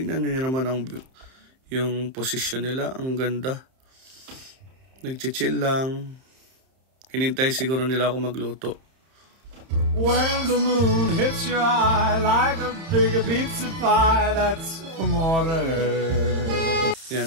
nyo naman yung position nila. Ang ganda. Nagchichill lang. Hinintay siguro nila ako magluto. When the moon hits your eye like a big pizza pie, that's amore.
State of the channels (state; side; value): late; left; 31 ms